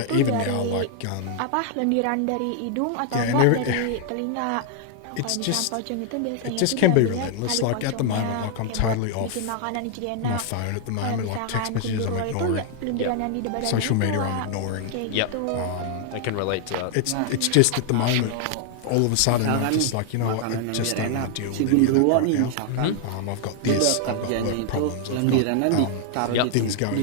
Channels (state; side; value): different; both; correlation 0.00